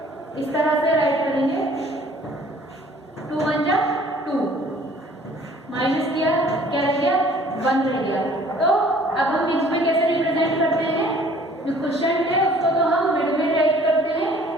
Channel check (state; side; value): normal; both; correlation 0.54